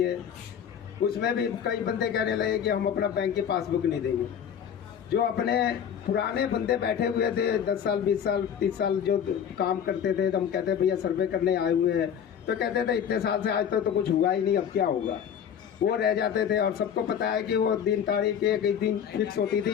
उसमें भी कई बंदे कहने लगे कि हम अपना बैंक की पासबुक नहीं देंगे। जो अपने पुराने बंदे बैठे हुए थे 10 साल 20 साल 30 साल जो काम करते थे, तो हम कहते भैया सर्वे करने आए हुए हैं, तो कहते थे इतने साल से आज तो कुछ हुआ ही नहीं, अब क्या होगा। वो रह जाते थे। और सबको पता है कि वो दिन तारीख एक दिन फिक्स होती थी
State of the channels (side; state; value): right; quieter; 8.4 dB